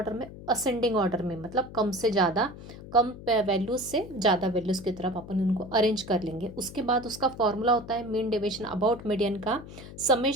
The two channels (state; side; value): noise; left; hum, 15 dB below the sound